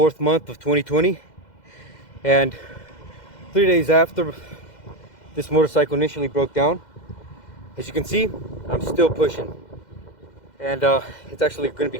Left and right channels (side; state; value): right; late; 2.1 ms